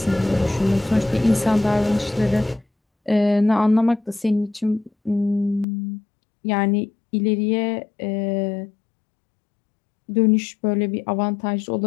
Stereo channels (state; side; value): drops out; right; at 5.7 s